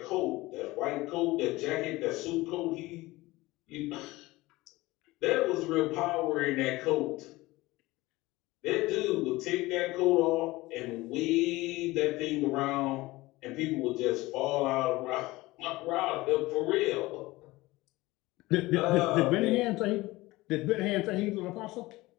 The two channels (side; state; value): right; quieter; 19.9 dB